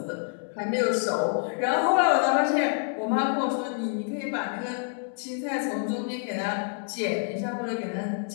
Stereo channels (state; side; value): silent; right; 60 dB below the other